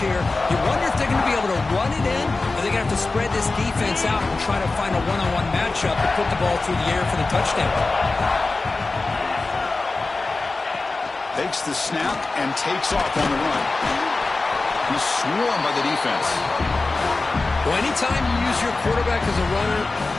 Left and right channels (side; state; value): right; quieter; 3.5 dB